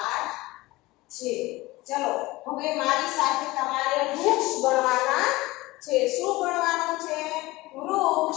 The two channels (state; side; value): quieter; right; 20.1 dB